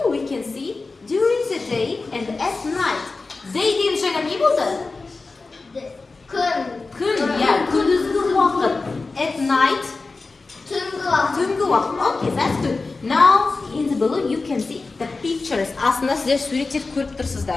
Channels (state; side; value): quieter; right; 3.8 dB